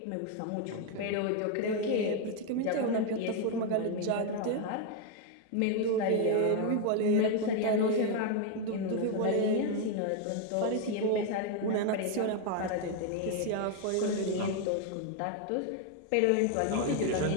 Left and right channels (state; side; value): different; both; correlation 0.01